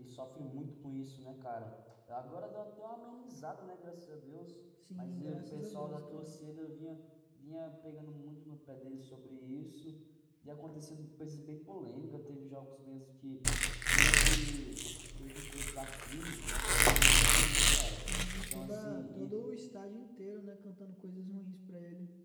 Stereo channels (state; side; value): identical; both; correlation 1.00